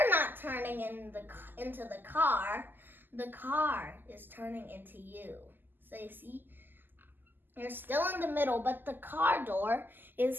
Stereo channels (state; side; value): late; left; 0.091 ms